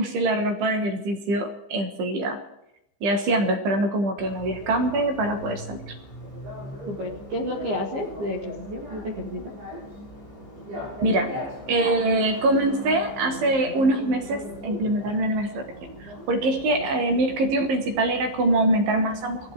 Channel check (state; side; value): late; left; 15 ms